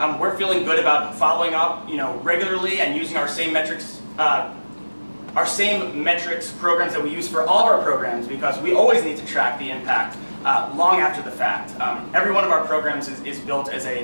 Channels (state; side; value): inverted; both; correlation -1.00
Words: we're feeling good about following up, regularly and using our same metrics programs that we use for all of our programs, because we always need to track the impact long after the fact. Every one of our programs is built as